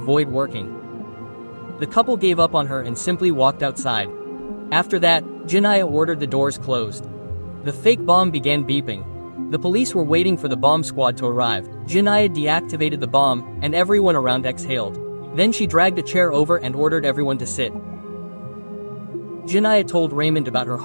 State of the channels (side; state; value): both; inverted; correlation -1.00